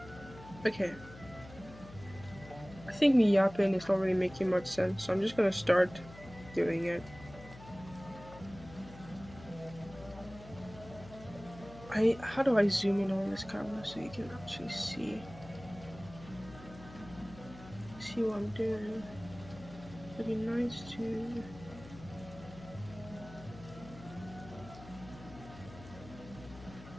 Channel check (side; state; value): left; noise; hum, 17 dB below the sound